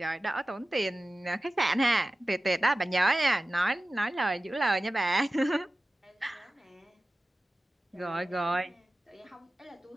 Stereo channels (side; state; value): both; normal; correlation 0.95